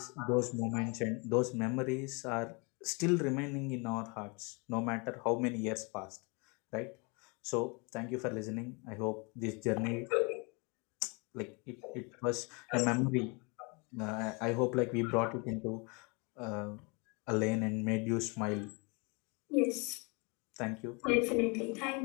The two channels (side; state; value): right; quieter; 31.2 dB